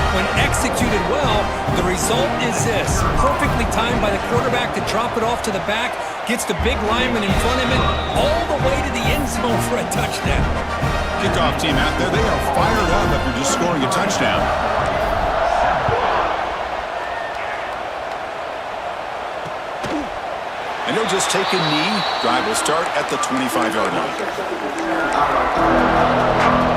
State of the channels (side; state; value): both; identical; correlation 1.00